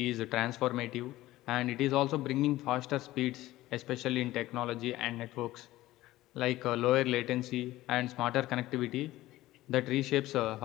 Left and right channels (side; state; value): right; quieter; 16.6 dB